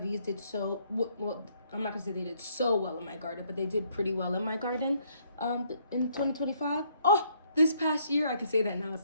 did so well. I'm not gonna say they did so well in my garden, but they did pretty well in my garden in 2025. Oh, this past year, I can say that now, it's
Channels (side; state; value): both; inverted; correlation -0.68